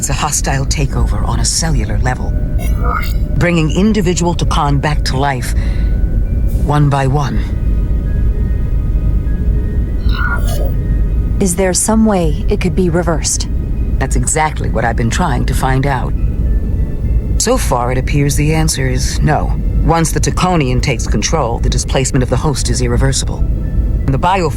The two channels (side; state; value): both; identical; correlation 1.00